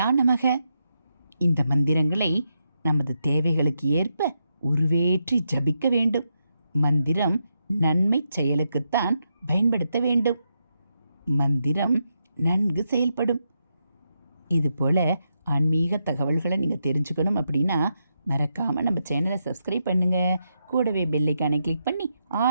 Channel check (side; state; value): both; inverted; correlation -0.83